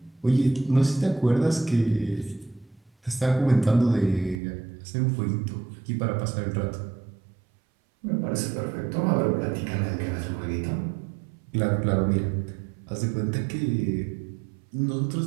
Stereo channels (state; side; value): drops out; left; at 4.4 s